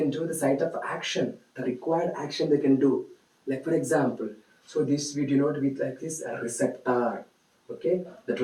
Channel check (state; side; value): identical; both; correlation 1.00